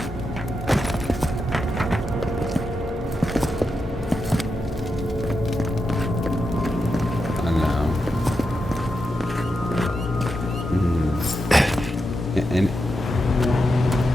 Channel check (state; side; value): normal; both; correlation 0.87